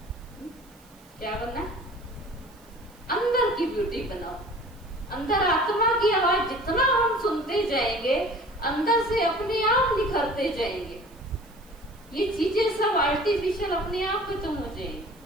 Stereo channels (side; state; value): right; noise; hiss, 28 dB below the sound